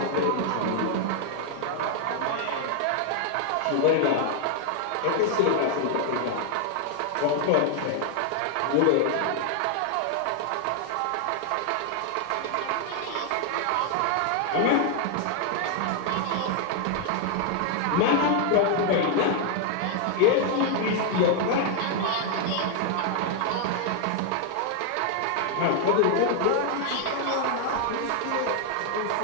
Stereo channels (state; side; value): different; both; correlation 0.00